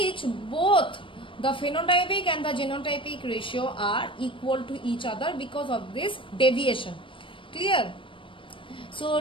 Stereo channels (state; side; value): late; right; 0.25 ms